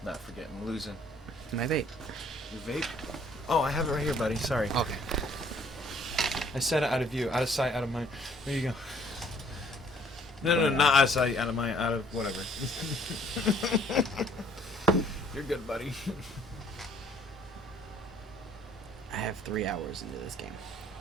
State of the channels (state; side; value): normal; both; correlation 0.60